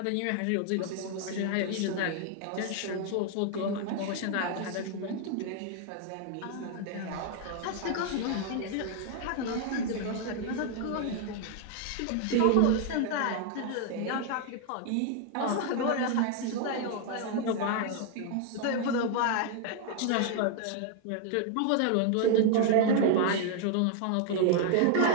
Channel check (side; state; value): both; different; correlation 0.00